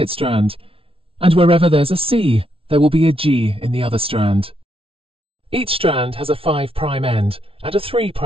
strand, and wherever there's a C, there will be a G in the other strand. Each strand has a 5' end and a 3'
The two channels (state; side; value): late; left; 0.26 ms